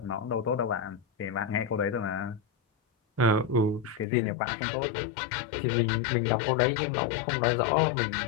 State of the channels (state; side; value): drops out; right; at 4.0 s